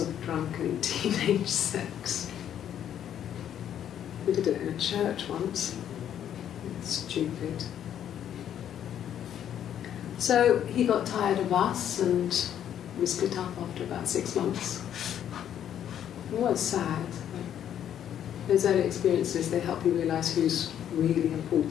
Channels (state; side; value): quieter; right; 10.0 dB